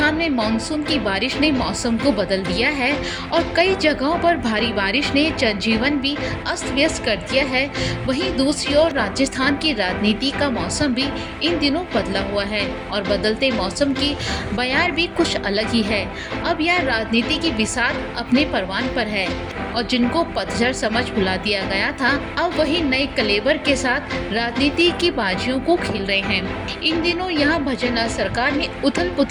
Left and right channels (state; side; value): identical; both; correlation 1.00